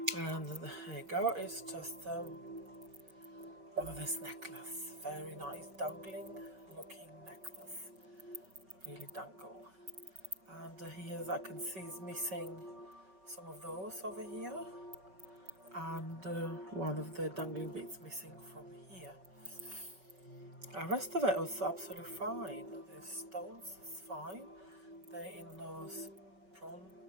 And there you go. It's just one of this necklace, very nice dangling looking necklace, really dangle. And here, as I can see, is missing some of those over here, and one of the dangling bits missing from here. The rest of it was absolutely fine. The stones is fine. They're in those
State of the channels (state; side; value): late; left; 5.5 ms